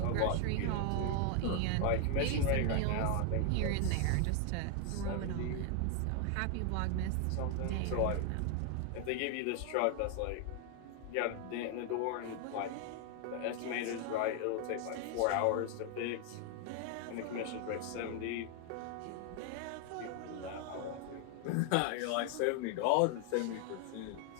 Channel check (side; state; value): both; different; correlation 0.00